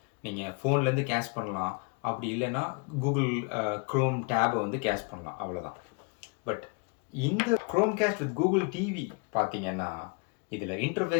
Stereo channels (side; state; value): right; quieter; 33.3 dB